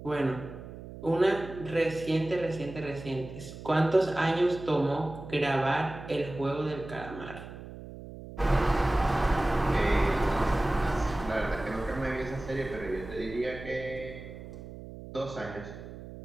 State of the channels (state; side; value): noise; right; hum, 13 dB below the sound